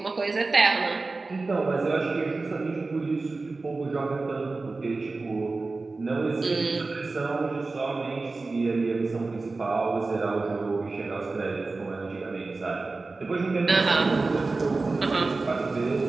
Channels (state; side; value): quieter; left; 3.6 dB